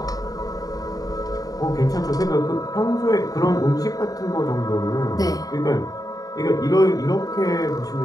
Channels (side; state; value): right; late; 0.18 ms